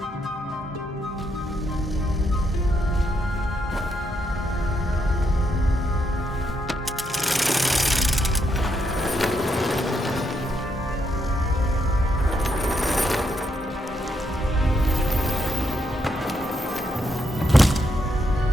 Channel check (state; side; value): normal; both; correlation 0.78